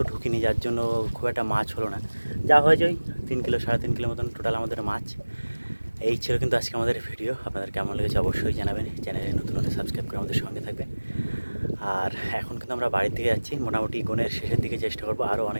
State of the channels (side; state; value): both; inverted; correlation -1.00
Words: ঢুকিনি, যার জন্য খুব একটা মাছ হলো না। যা হয়েছে ওই 3 কিলো 3.5 কিলো মতন টোটাল আমাদের মাছ। এই ছিল কিন্তু আজকে আমাদের ভিডিও। আপনাদের কেমন লেগেছে অবশ্যই জানাবেন। চ্যানেলে নতুন হলে সাবস্ক্রাইব করে আমাদের সঙ্গে থাকবেন। আর এখন কিন্তু আমরা বাড়ির দিকে যাচ্ছি, মোটামুটি গনের শেষের দিকে চেষ্টা করবো আরও